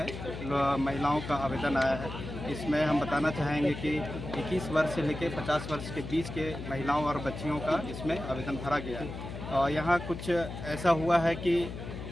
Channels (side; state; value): left; noise; hum, 9 dB below the sound